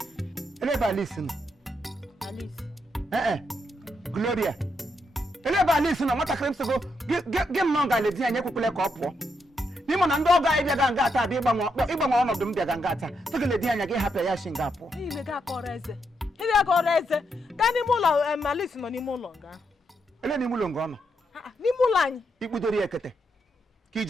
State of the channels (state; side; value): normal; both; correlation 0.80